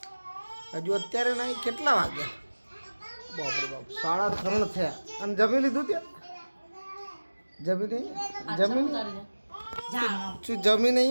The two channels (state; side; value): inverted; both; correlation -1.00